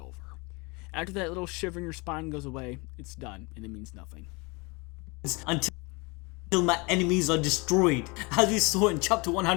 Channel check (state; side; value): quieter; right; 27.6 dB